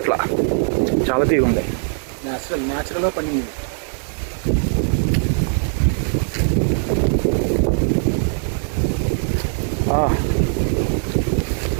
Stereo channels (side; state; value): left; silent; digital silence